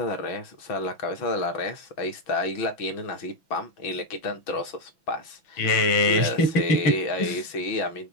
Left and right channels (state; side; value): late; right; 6.0 ms